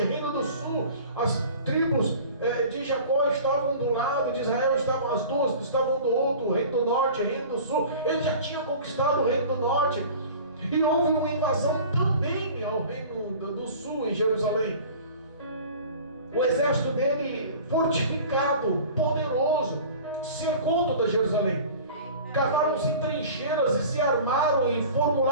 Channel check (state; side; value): inverted; both; correlation -0.42